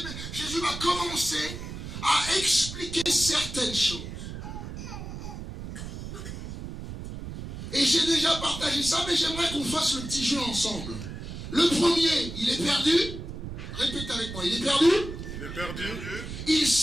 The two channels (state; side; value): noise; right; rumble, 9 dB below the sound